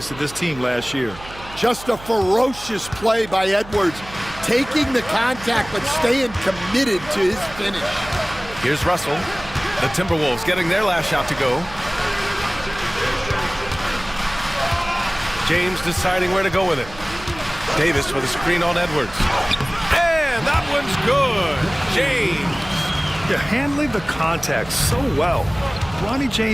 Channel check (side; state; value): right; noise; hum, 17 dB below the sound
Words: to this team last year. Just a ferocious play by Edwards, taking the contact but staying committed to his finish. Here's Russell. The Timberwolves getting their last shot to go. James deciding where to go with it. Davis with a screen on Edwards. And that one's good. James. They're handling the contact so well. Bronny